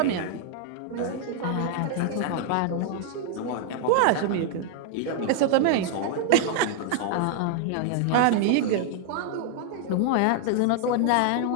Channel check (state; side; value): different; both; correlation 0.00